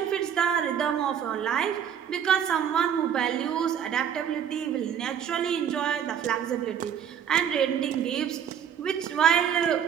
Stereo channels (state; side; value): quieter; left; 8.6 dB